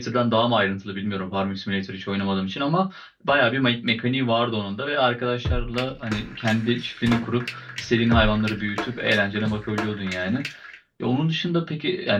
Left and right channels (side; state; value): both; identical; correlation 1.00